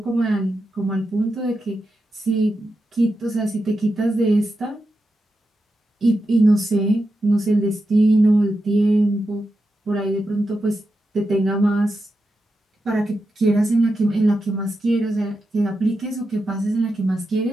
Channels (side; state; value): both; normal; correlation 0.88